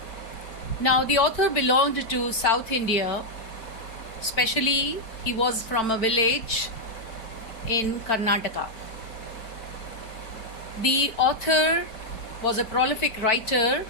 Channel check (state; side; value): late; right; 4.5 ms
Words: Now, the author belonged to South India, especially, he was from a village in Karnataka. The author was a prolific writer